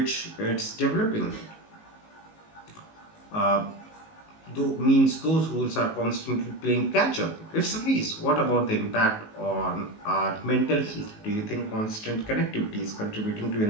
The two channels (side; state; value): right; late; 19 ms